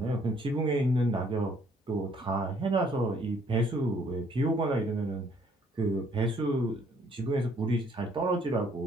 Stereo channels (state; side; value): normal; both; correlation 0.64